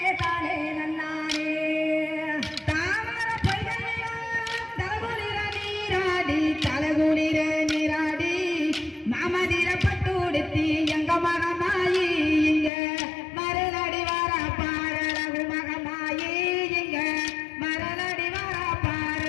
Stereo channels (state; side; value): drops out; right; at 12.7 s